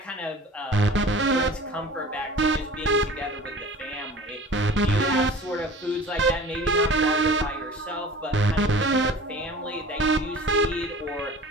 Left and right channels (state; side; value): normal; both; correlation 0.42